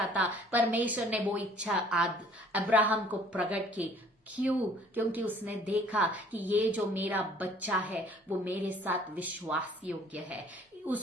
था, परमेश्वर ने वो इच्छा अब्राहम को प्रकट की। क्यों? क्योंकि उसने देखा कि ये जो मेरा बच्चा है वो मेरे साथ विश्वास योग्य है।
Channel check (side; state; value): both; normal; correlation 0.55